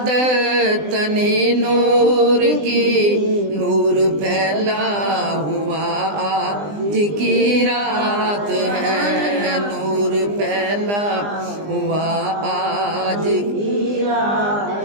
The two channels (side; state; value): left; late; 20 ms